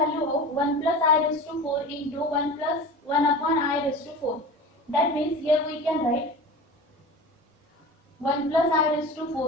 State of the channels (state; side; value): normal; both; correlation 0.33